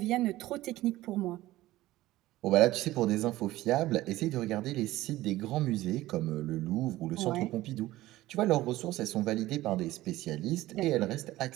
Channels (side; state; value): left; quieter; 16.6 dB